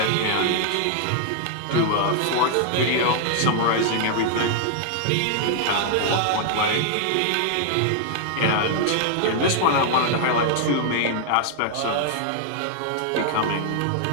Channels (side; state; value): both; different; correlation 0.00